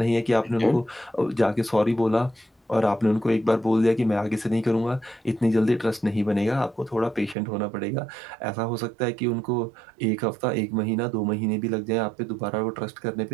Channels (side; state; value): left; drops out; at 7.4 s